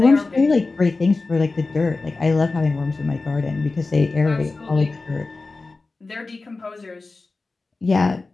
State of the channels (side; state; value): right; quieter; 3.6 dB